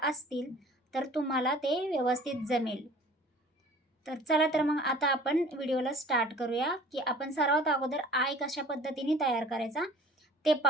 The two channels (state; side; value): normal; both; correlation 0.48